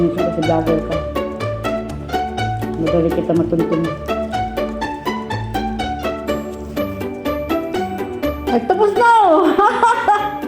kasi vlogger ka. Madali kita matuntun. Ay, tapos na oh!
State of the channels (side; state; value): both; identical; correlation 1.00